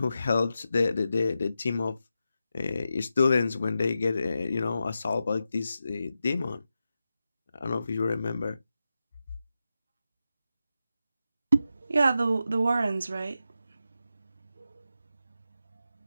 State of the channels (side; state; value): both; inverted; correlation -0.90